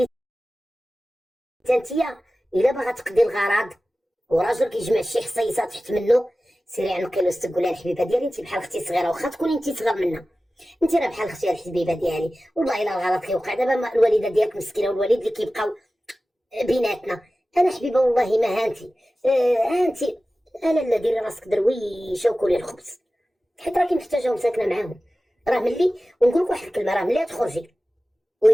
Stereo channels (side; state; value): both; normal; correlation 0.96